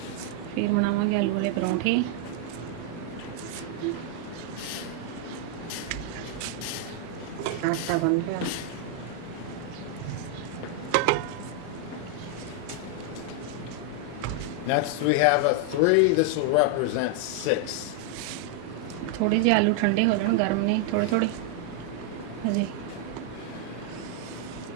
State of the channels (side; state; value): both; different; correlation 0.00